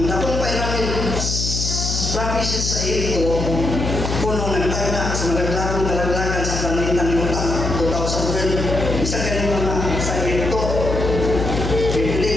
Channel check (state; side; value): noise; left; hum, 3 dB below the sound